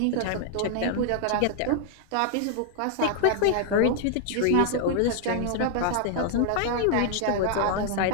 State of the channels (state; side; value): different; both; correlation 0.00